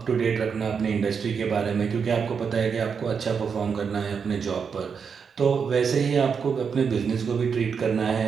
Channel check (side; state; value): left; quieter; 6.2 dB